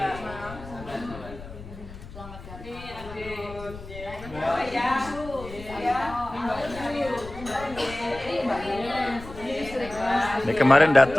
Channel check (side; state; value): left; noise; rumble, 14 dB below the sound